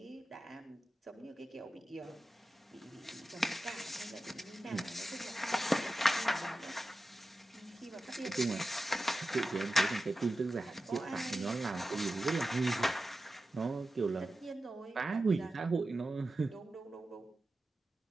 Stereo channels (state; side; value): normal; both; correlation 0.93